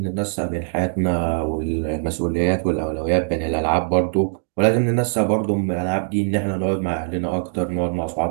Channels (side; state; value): left; silent; digital silence